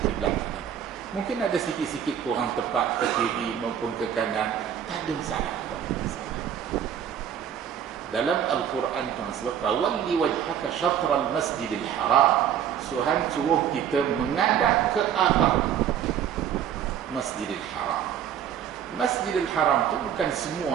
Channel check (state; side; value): quieter; left; 9.2 dB